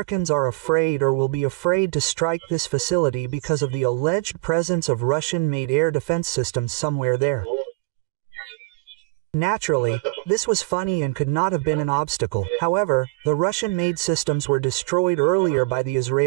are afraid or will be afraid to strike this facility because of the alleged presence of Russian-made air defense systems somewhere there. Naturally, this was funny and could not have been an obstacle. However, the Russian-made systems were destroyed earlier by the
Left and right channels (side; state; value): left; quieter; 24.7 dB